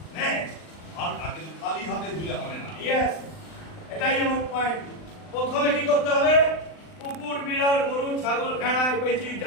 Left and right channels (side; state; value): right; late; 39 ms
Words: আর আগে খালি হাতে ধুলে হবে না। ইয়েস, এটাই আমার পয়েন্ট। প্রথমে কি করতে হবে? কুকুর, বিড়াল, গরু, ছাগল, ভেড়া, পেঁচি